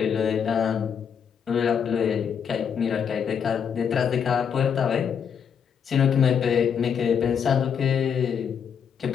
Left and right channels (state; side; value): quieter; right; 7.5 dB